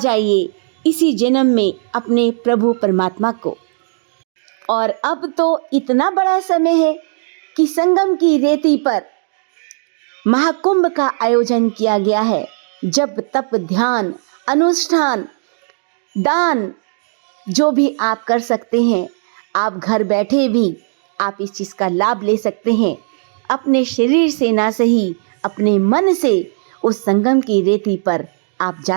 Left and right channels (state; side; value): silent; left; digital silence